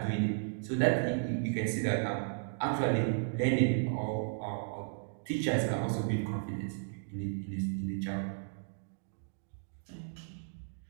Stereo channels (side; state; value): left; silent; digital silence